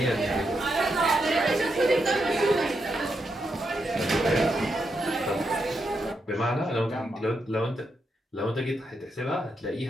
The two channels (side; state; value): both; normal; correlation 0.83